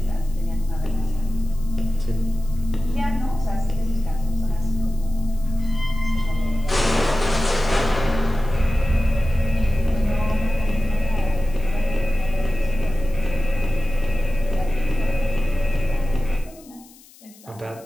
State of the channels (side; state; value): left; noise; hiss, 25 dB below the sound